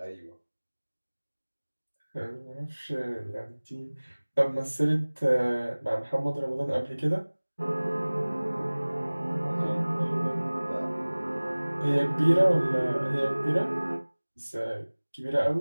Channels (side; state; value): both; inverted; correlation -1.00